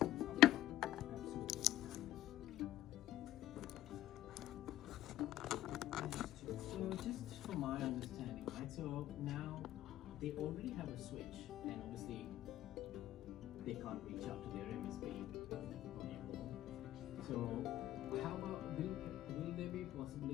So just from my understanding, right? So now they already have a switch, and obviously they can't reach out to their MSP anymore. So how about will there be a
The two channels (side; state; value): right; quieter; 13.8 dB